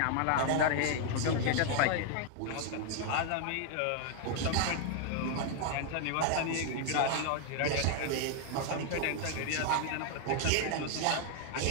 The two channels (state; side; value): different; both; correlation 0.00